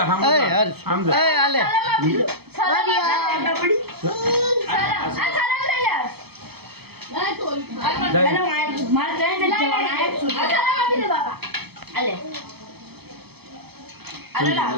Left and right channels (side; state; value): left; late; 0.97 ms